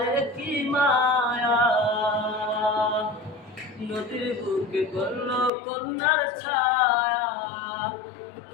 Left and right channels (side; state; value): right; drops out; at 5.5 s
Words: কি মায়া, নদীর বুকে পড়ল কন্যার ছায়া।